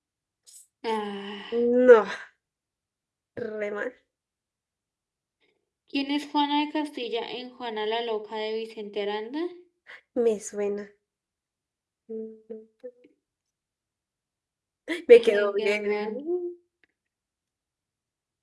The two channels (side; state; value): both; identical; correlation 1.00